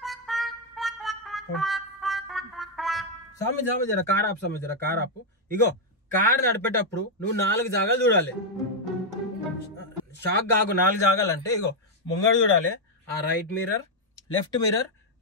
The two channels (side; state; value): both; normal; correlation -0.01